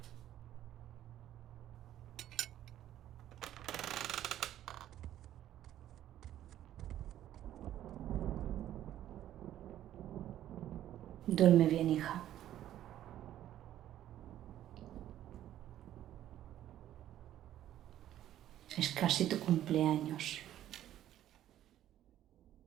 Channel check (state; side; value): quieter; left; 12.2 dB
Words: Duerme bien, hija. Es casi tu cumpleaños.